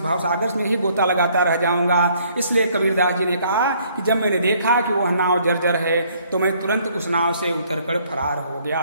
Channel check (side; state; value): both; inverted; correlation -0.63